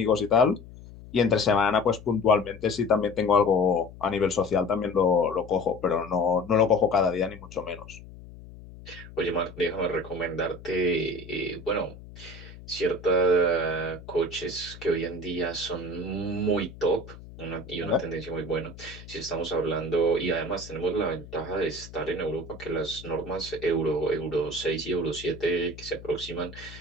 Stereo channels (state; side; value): noise; left; hum, 17 dB below the sound